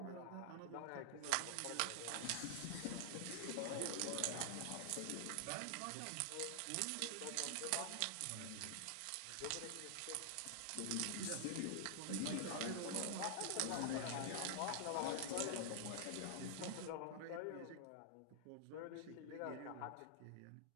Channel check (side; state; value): both; different; correlation -0.01